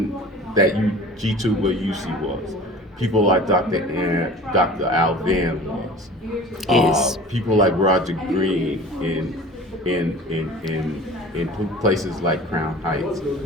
that G2 UC was. People like Dr. Al Van was. People like Roger Green in places like Crown Heights.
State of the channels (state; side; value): normal; both; correlation 0.41